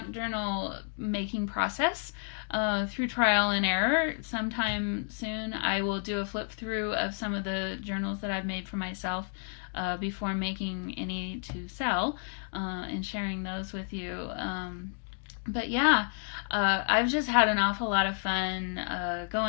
journal making process through trial and error. Sometime soon I will do a flip through of some of the journals that I've made for myself before making any to sell and sharing those with you. But yeah, I've just had an awful lot of fun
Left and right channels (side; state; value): right; silent; 57 dB below the other